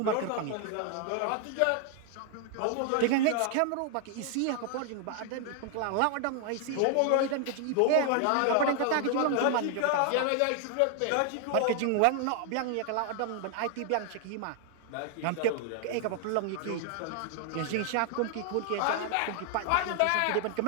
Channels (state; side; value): different; both; correlation 0.00